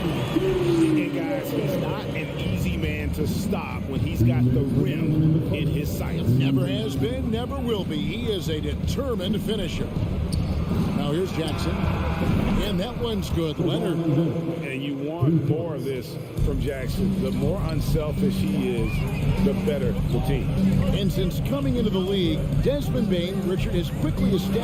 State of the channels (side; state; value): both; identical; correlation 1.00